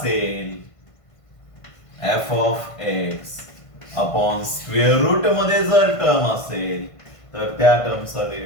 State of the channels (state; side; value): late; right; 1.5 ms